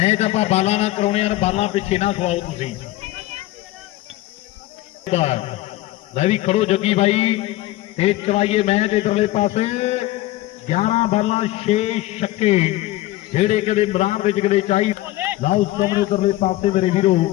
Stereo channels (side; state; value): right; quieter; 16.8 dB